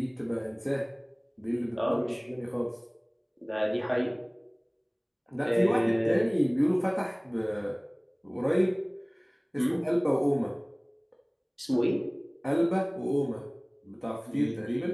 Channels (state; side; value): identical; both; correlation 1.00